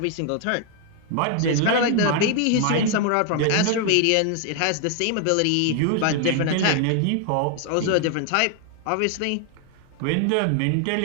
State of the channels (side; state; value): both; different; correlation 0.00